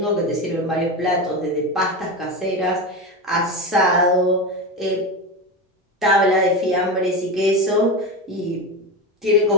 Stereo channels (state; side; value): normal; both; correlation 0.19